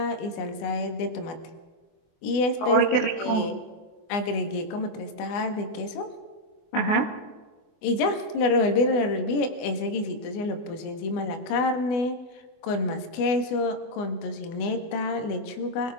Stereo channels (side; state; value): right; late; 24 ms